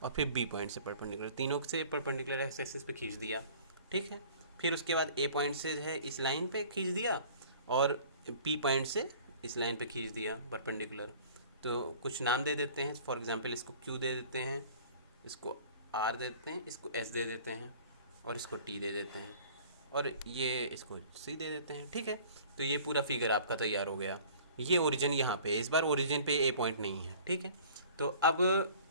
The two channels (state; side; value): inverted; both; correlation -0.48